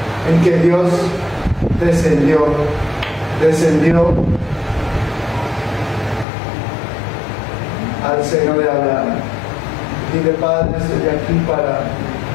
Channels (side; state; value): right; drops out; at 6.2 s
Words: en que Dios descendió al seno de Abraham. Dile: Padre, estoy aquí para